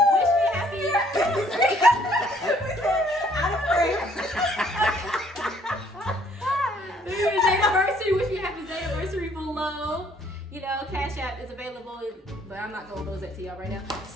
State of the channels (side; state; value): both; normal; correlation 0.63